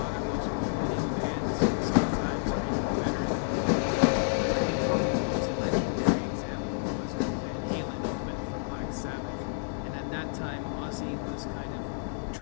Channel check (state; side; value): silent; right; digital silence